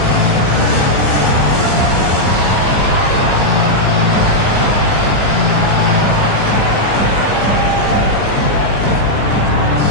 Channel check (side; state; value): right; late; 16 ms